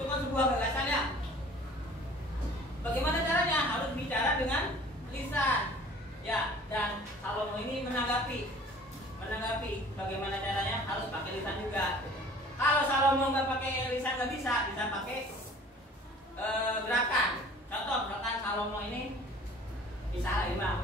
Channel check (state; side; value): normal; both; correlation 0.48